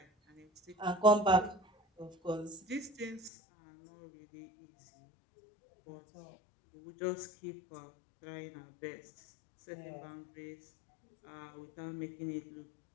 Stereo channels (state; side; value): drops out; right; at 3.3 s